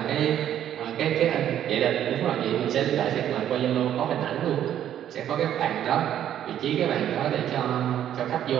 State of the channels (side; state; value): left; quieter; 10.7 dB